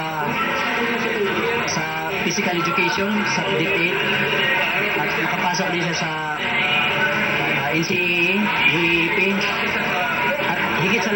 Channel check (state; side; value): identical; both; correlation 1.00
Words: physical education, sa DepEd, at makapasok din siya sa NCAA, UAAP, at higit sa